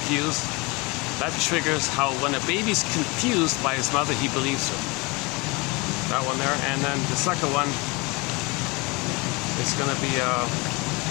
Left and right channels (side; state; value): right; quieter; 26.8 dB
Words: That triggers how when a baby's confused by his mother, he believes her. That one there. And then the second one is going to be I